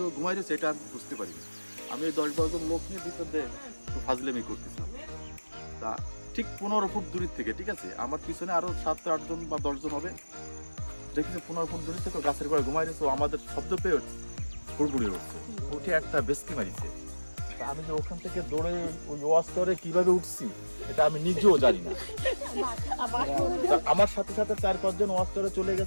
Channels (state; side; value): inverted; both; correlation -1.00